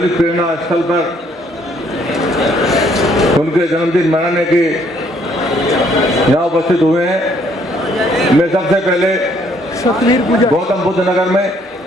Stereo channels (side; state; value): both; normal; correlation 0.66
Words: प्रेरणा स्थल पर उनके जन्मदिन मनाने के यहाँ उपस्थित हुए हैं। मैं सबसे पहले गौतम बुद्ध नगर में